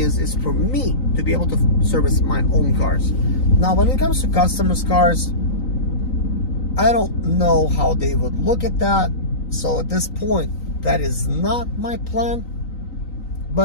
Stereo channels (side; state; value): right; late; 3.9 ms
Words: for me to be able to service my own cars. Now, when it comes to customers' cars, I don't know how they would look at that. So at this point, that is not my plan.